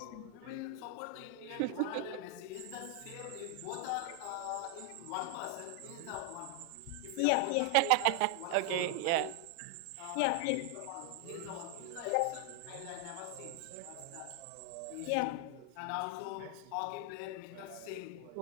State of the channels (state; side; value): different; both; correlation 0.00